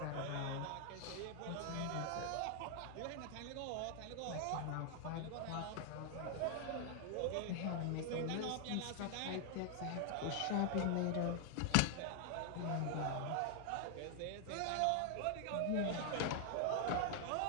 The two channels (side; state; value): both; different; correlation 0.00